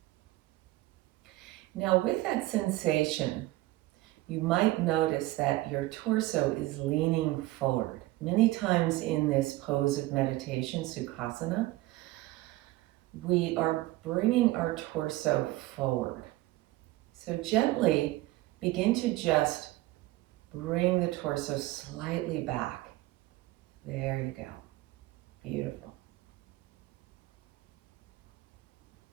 Now with that sensation, you might notice that your torso is leaning forward. Many times in this pose of meditation, Sukhasana, we are bringing our torso forward. So gently begin to just bring the torso slightly back. There you go. Beautiful.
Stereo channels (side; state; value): left; quieter; 18.2 dB